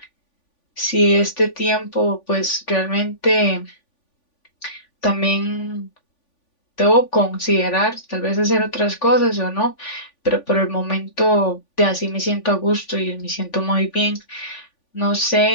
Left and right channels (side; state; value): right; late; 3.5 ms